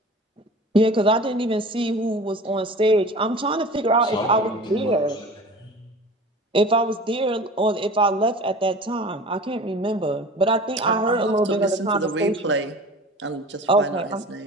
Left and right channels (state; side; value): normal; both; correlation 0.39